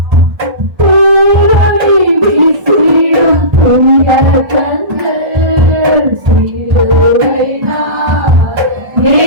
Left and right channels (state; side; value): late; left; 1.4 ms